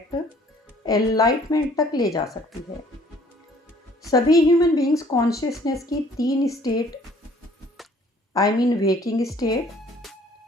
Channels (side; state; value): both; normal; correlation 0.58